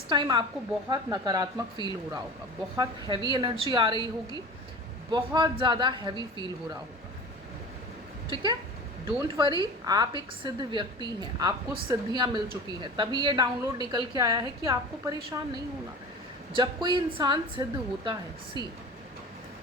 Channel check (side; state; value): both; normal; correlation 0.36